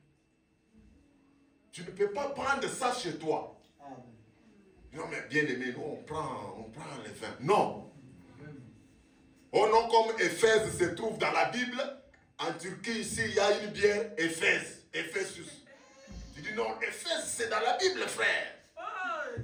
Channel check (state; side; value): identical; both; correlation 1.00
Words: tu ne peux pas prendre ça chez toi. Amen. Non, mais bien aimé, nous on prend le vin. Non. Oh non, comme Éphèse se trouve dans la Bible, en Turquie, ici, il y a une bière Éphèse, Ephésus. Tu dis non, Éphèse, c'est dans la Bible, frère.